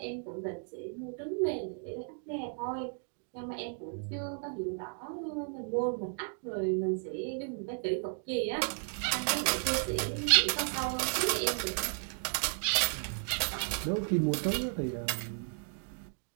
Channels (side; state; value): left; silent; 55 dB below the other